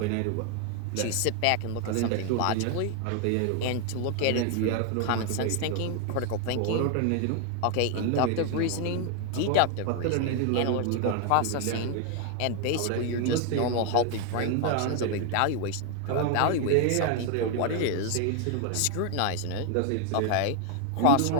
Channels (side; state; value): both; different; correlation 0.01